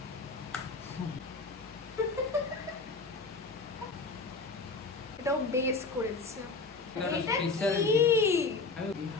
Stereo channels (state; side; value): quieter; right; 4.0 dB